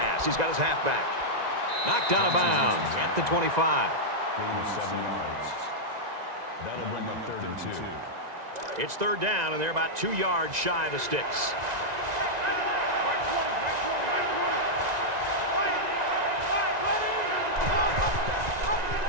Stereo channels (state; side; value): late; left; 1.9 ms